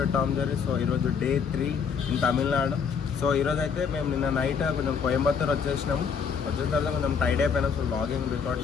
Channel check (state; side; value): quieter; right; 6.3 dB